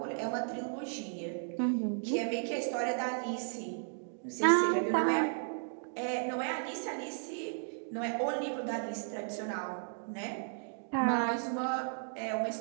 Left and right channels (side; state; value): left; silent; digital silence